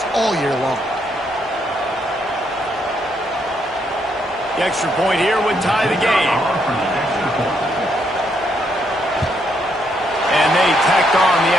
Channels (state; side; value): normal; both; correlation 0.75